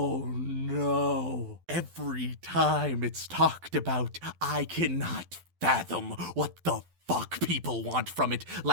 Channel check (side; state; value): left; late; 12 ms